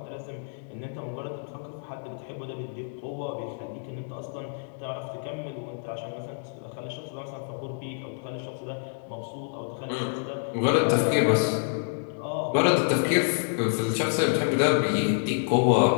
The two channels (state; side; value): silent; right; digital silence